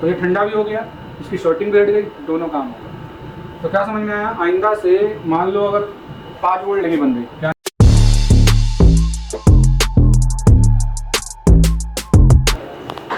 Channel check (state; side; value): identical; both; correlation 1.00